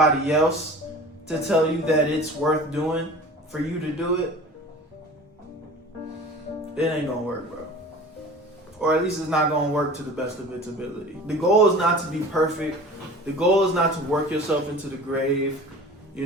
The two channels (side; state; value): both; normal; correlation 0.40